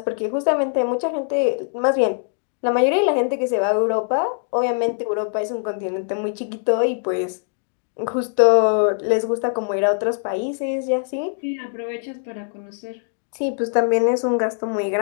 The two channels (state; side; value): silent; right; digital silence